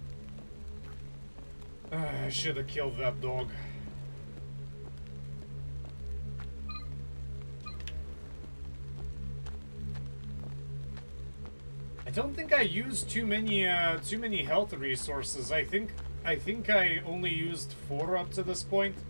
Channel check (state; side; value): inverted; both; correlation -1.00